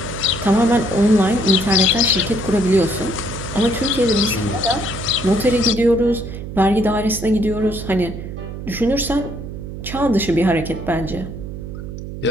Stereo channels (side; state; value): right; noise; hum, 9 dB below the sound